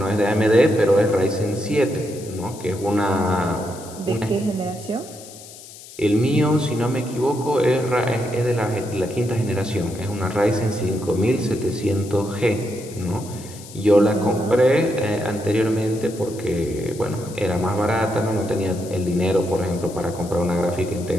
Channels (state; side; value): noise; left; hiss, 17 dB below the sound